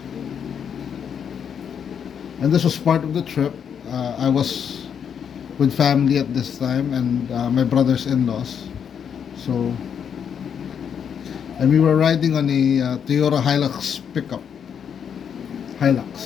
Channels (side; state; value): right; quieter; 7.7 dB